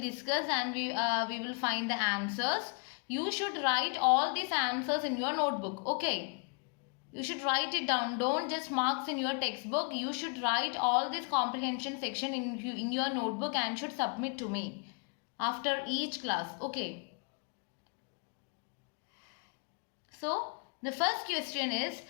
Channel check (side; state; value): right; quieter; 37.0 dB